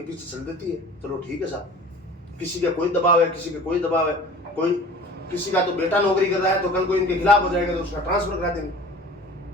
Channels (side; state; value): both; normal; correlation 0.42